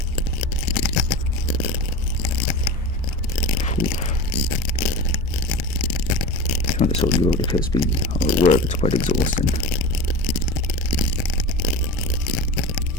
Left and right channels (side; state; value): both; normal; correlation 0.29